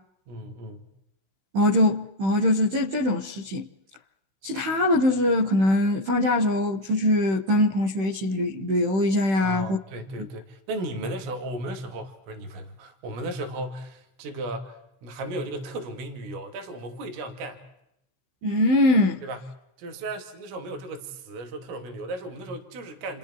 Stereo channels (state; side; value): late; left; 16 ms